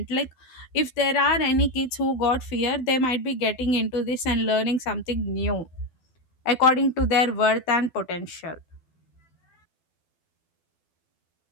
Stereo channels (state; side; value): late; right; 12 ms